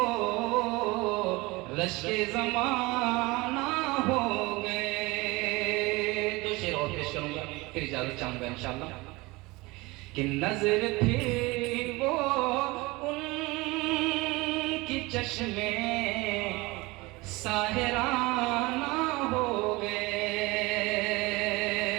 رشک زمانہ ہو گئے. دو شعر اور پیش کروں گا, پھر اجازت چاہوں گا انشاءاللہ. کہ نظر پھر وہ ان کی چشمے ساحرانہ ہو گئے.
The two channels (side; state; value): left; quieter; 22.8 dB